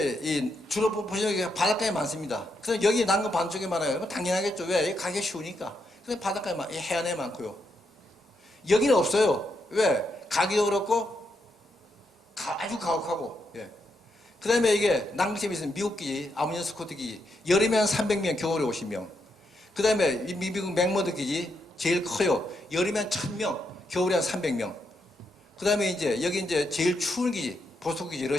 주로 보시면 바닷가에 많습니다. 그래서 여기 난간 반쪽에 많아요. 당연하겠죠. 왜? 여기 가기 쉬우니까. 그래서 바닷가에 해안에 많고요. 여기는 없어요. 왜? 가기도 그렇고 아주 가혹하고. 예. 그 다음에 이게 남극점에 있는 미국 기지, 아무니언 스코트 기지, 여름에 한 300명, 겨울에 50명. 그 다음에 미국 맥머드 기지, 제일 커요. 여름에 한 1000명, 겨울에 한 300명. 그 다음에 이제 여기 이제 제일 추운 기지, 보스토크 기지,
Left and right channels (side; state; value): both; normal; correlation 0.80